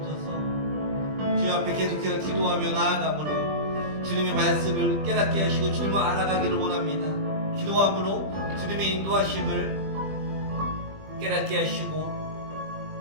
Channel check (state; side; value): late; left; 20 ms